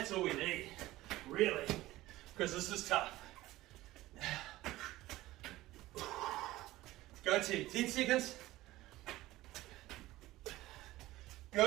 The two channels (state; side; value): quieter; left; 17.1 dB